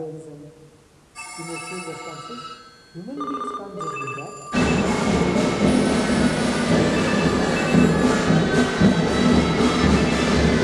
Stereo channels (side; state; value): both; identical; correlation 1.00